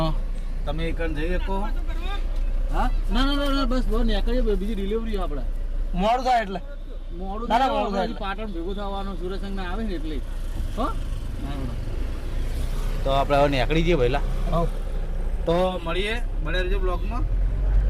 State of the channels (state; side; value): identical; both; correlation 1.00